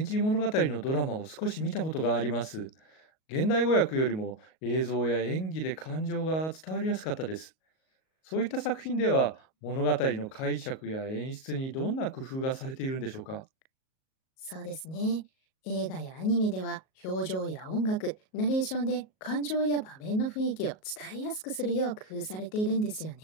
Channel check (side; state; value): right; late; 38 ms